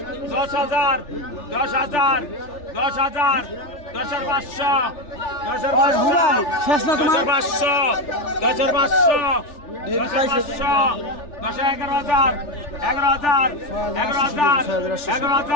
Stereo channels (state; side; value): late; right; 3.4 ms